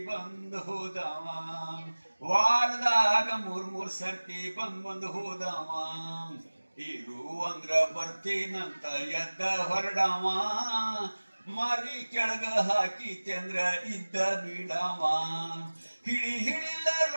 ಬಂದು ಹೋದವ ವಾರದಾಗ ಮೂರ್ ಸರ್ತಿ ಬಂದು ಹೋದವ ಇರು ಅಂದ್ರ ಬರ್ತೀನಂತ ಎದ್ದ ಹೊರಡವ ಮಾರಿ ಕೆಳಗ ಹಾಕಿತೆಂದ್ರ ಇದ್ದ ಬಿಡವ ಹಿಡಿಲ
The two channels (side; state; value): both; inverted; correlation -1.00